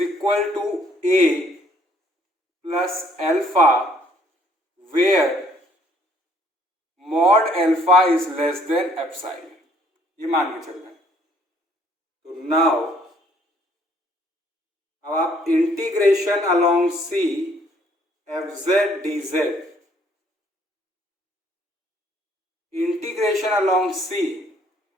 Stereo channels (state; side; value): normal; both; correlation 0.63